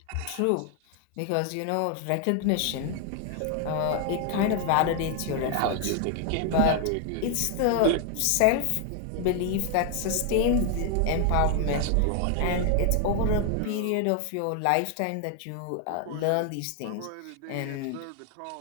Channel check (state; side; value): different; both; correlation 0.00